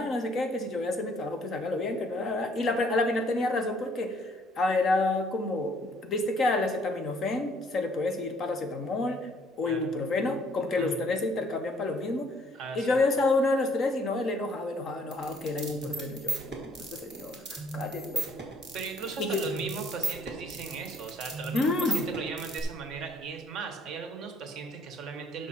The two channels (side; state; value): both; normal; correlation 0.63